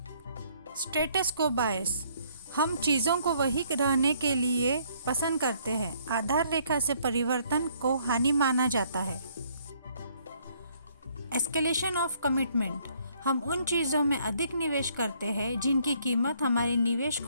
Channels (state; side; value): inverted; both; correlation -0.65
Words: स्टेटस को बायस, हम चीज़ों को वही रहने के लिए पसंद करते हैं, आधार रेखा से परिवर्तन को हानि माना जाता है। एस्केलेशन ऑफ कमिटमेंट, हम उन चीज़ों में अधिक निवेश करते हैं जिनकी कीमत हमारे निवेश